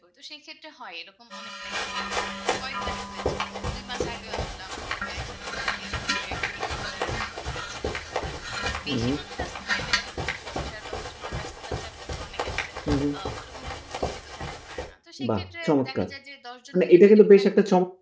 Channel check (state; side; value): identical; both; correlation 1.00